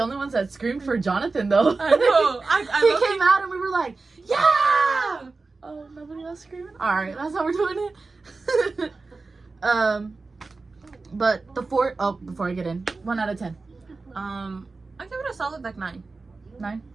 ones that screamed for Jonathan, though. I know. He came out and we were like, yeah! Oh, nobody else screaming? Alright, that's how we're doing it. But the fourth... Oh, before I get in. 1 out of 10. I give it a solid, like, 9. 9?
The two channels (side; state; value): left; quieter; 3.9 dB